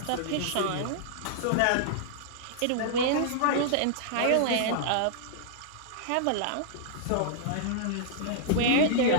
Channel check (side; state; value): both; different; correlation -0.01